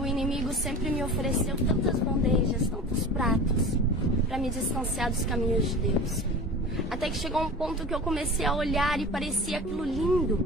inimigo sempre me ofereceu tantas bandejas, tantos pratos, para me distanciar dos caminhos de Deus. Até que chegou um ponto que eu comecei a olhar e parecia aquilo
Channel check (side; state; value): both; normal; correlation 0.35